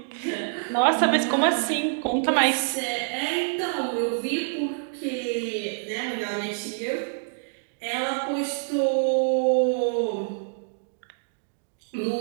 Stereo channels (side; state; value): left; silent; digital silence